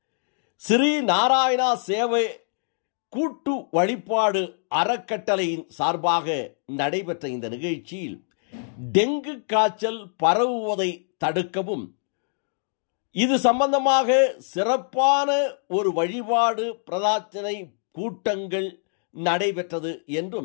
ஸ்ரீ நாராயணா சேவை கூட்டு வழிபாடு அறக்கட்டளையின் சார்பாக நடைபெற்ற இந்த நிகழ்ச்சியில் டெங்கு காய்ச்சல் பரவுவதை தடுக்கவும் இது சம்பந்தமாக சிறப்பான ஒரு வழிபாடு பிரார்த்தனை கூட்டங்கள் நடைபெற்றது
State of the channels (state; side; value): silent; right; digital silence